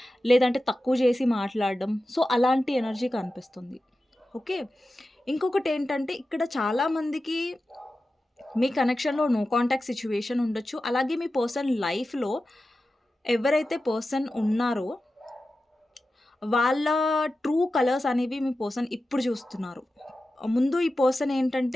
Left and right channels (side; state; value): both; normal; correlation 0.93